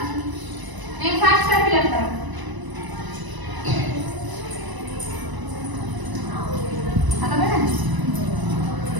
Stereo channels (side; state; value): left; late; 1.0 ms